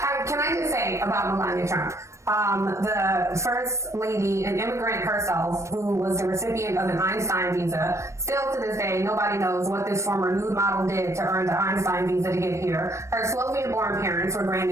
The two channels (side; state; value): left; late; 0.14 ms